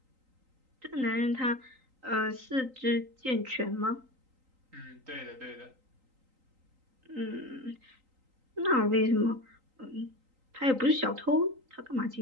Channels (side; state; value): left; late; 3.8 ms